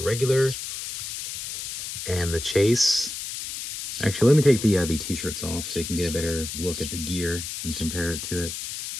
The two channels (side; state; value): left; noise; hiss, 7 dB below the sound